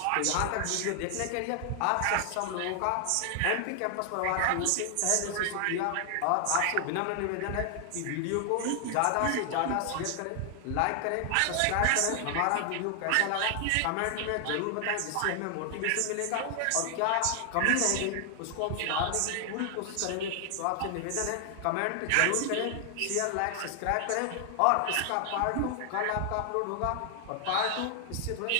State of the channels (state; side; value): different; both; correlation 0.00